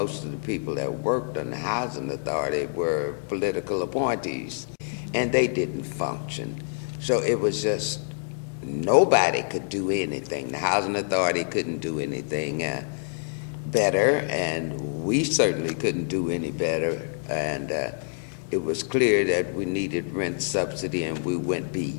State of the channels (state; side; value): silent; right; digital silence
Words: of the people that worked on the Housing Authority were political appointees, and they didn't function. So it was just, nobody could do anything. The Housing Authority couldn't do anything better, and we certainly couldn't do any better. And it was clear that we needed rent subsidy, and we went